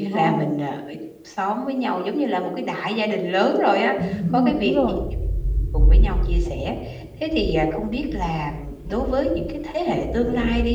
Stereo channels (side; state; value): both; identical; correlation 1.00